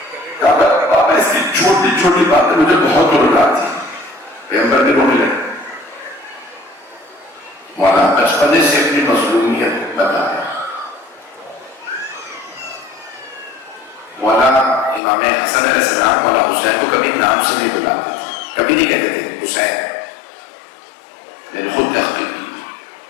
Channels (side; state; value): right; drops out; at 15.0 s